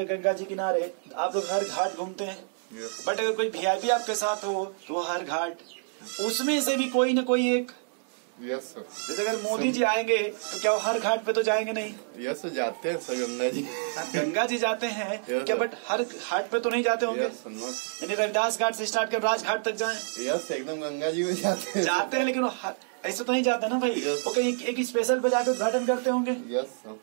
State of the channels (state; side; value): silent; left; digital silence